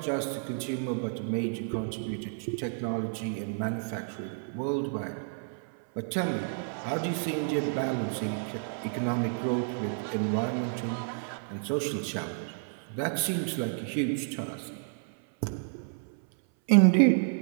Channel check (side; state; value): left; silent; 56 dB below the other